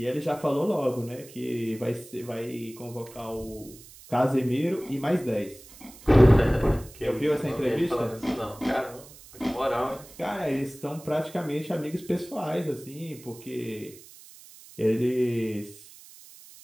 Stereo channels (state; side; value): noise; right; hiss, 20 dB below the sound